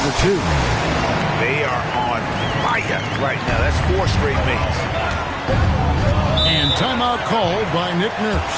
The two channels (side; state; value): both; identical; correlation 1.00